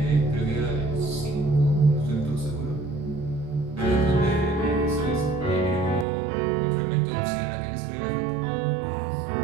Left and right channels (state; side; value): drops out; left; at 6.1 s